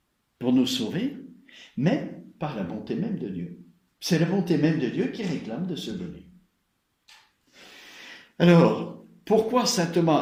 pour nous sauver, mais par la bonté même de Dieu. C'est la bonté même de Dieu qui réclame de se donner. Alors, pourquoi saint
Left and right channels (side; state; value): both; identical; correlation 1.00